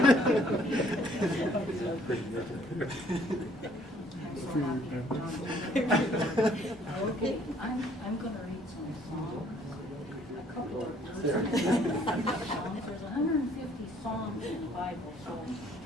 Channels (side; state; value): both; normal; correlation 0.61